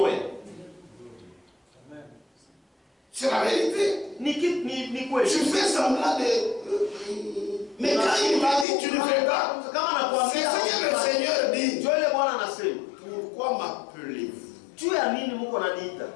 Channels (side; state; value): right; drops out; at 8.7 s